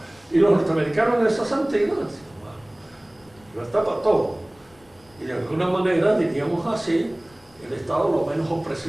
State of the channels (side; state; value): left; noise; rumble, 30 dB below the sound